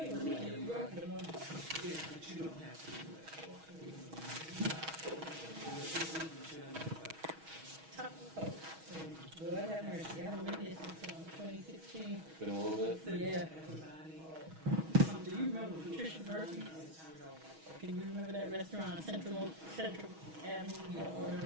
that. Lord have mercy. I haven't been here since 2016. Been a little bit. Yeah. Do you remember Patricia Murphy? Can you remember that restaurant on Central Avenue or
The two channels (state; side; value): late; left; 6.3 ms